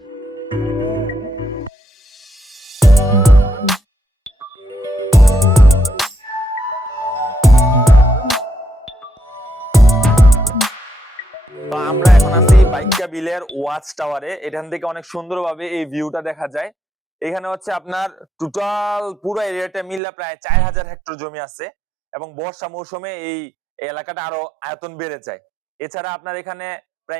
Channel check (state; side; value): drops out; left; at 20.0 s